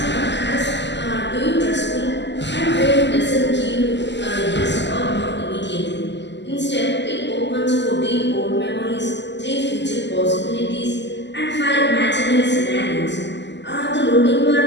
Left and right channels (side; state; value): right; late; 0.51 ms